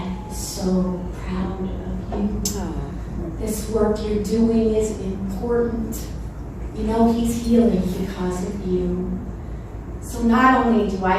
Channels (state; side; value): identical; both; correlation 1.00